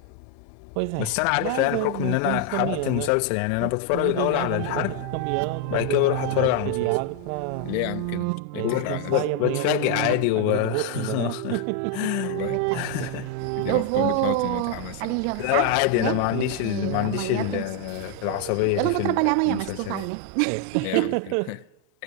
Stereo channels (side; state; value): both; different; correlation 0.01